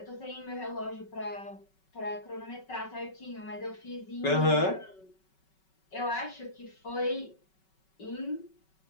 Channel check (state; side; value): late; right; 5.3 ms